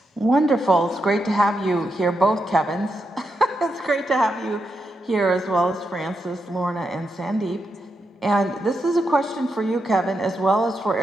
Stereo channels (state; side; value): normal; both; correlation 0.85